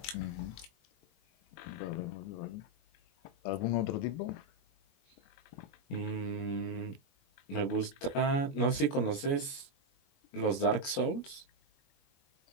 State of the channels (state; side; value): late; right; 21 ms